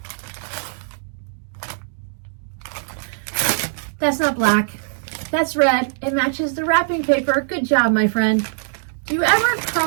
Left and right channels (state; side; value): silent; left; digital silence